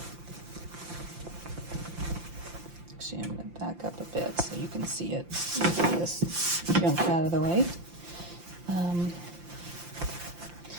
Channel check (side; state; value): left; late; 5.8 ms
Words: Actually, I'm going to back up a bit so you can see it. Get this junk out of the way. I'm